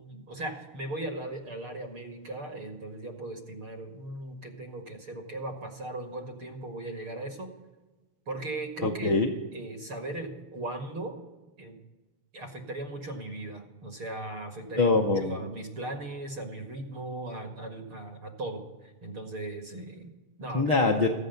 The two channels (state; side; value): late; left; 6.7 ms